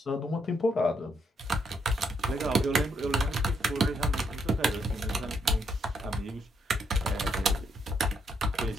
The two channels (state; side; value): normal; both; correlation 0.75